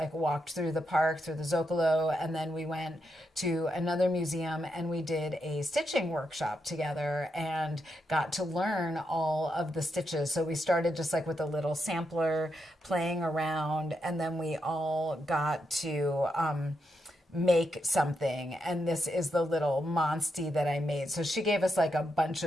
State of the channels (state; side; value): normal; both; correlation 0.83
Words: walked through the park, through the Zocalo, and then we went to another museum, and we did a stitching workshop together and got to learn all of the stitches. So we started just with a little sampler, playing around, and then we all got to make something. And this is the little monstie that I made. So she gave us a bunch